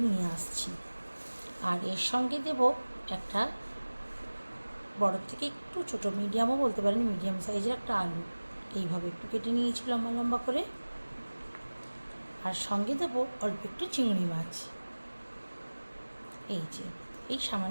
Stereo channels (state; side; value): inverted; both; correlation -1.00